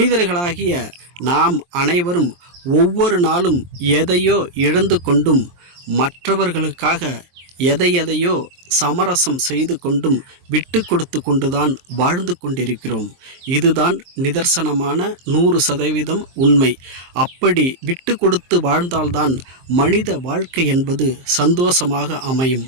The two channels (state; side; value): late; left; 23 ms